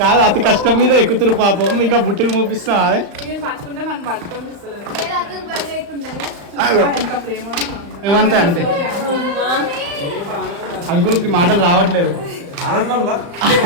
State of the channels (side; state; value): left; late; 35 ms